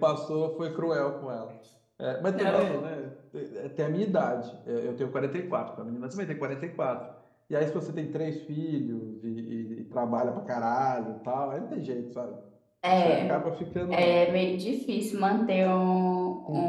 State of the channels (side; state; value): both; identical; correlation 1.00